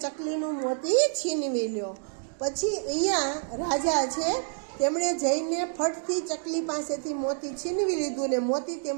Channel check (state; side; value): silent; left; 59 dB below the other